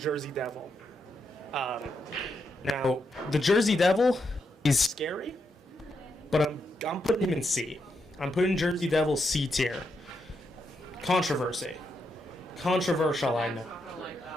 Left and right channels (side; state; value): both; normal; correlation 0.82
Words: Devil. Now, the Jersey Devil is scary, but I'm putting him in C. I'm putting Jersey Devil C tier. Controversial, I know.